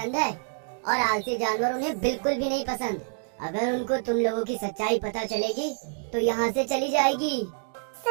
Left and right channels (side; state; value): left; silent; digital silence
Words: है और आलसी जानवर उन्हें बिल्कुल भी नहीं पसंद। अगर उनको तुम लोगों की सच्चाई पता चलेगी तो यहाँ से चली जाएगी।